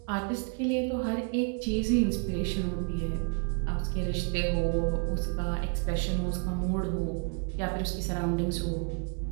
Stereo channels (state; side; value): quieter; left; 39.4 dB